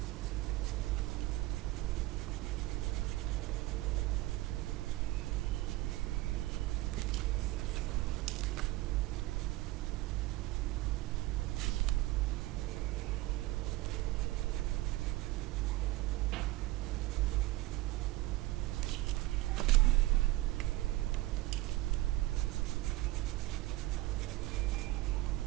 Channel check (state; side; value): quieter; left; 18.6 dB